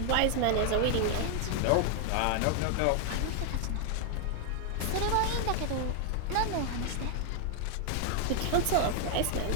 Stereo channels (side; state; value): both; different; correlation 0.00